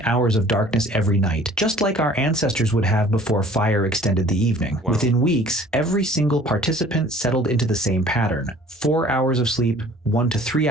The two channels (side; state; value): both; normal; correlation 0.51